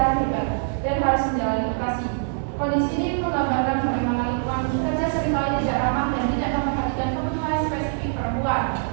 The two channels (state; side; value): silent; left; digital silence